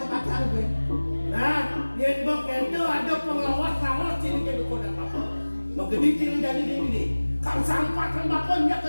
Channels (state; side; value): inverted; both; correlation -1.00